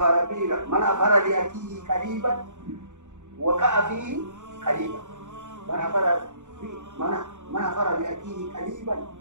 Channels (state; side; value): late; left; 0.85 ms